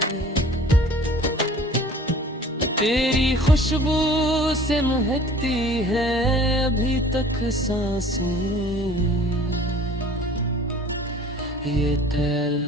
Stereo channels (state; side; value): normal; both; correlation 0.49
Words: तेरी खुशबू से महकती है अभी तक सांसें, ये